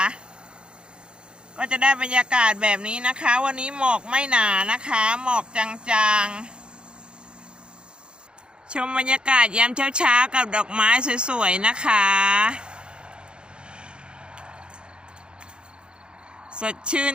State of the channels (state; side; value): late; left; 0.052 ms